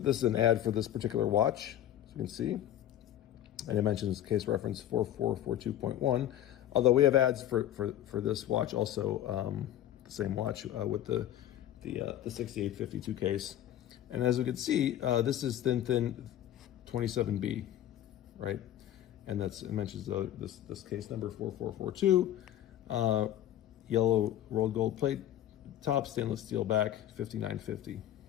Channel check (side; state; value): right; quieter; 12.1 dB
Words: is an ad for this particular watch, as you can see. And it mentions case reference 4442.1. Although we have ads for this watch also, the same watch with the 6852 case. And as we can see, this is thin 27B, right? And it mentions this case number 4442, yellow rolled gold plate top, stainless steel back, 5950.